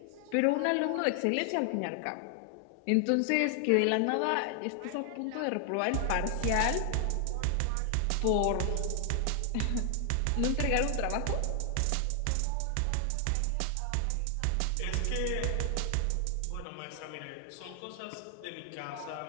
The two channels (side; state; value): both; different; correlation 0.00